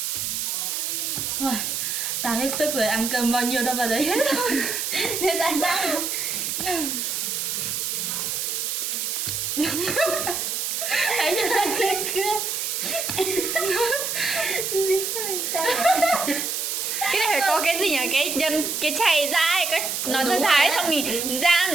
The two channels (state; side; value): noise; right; hiss, 1 dB below the sound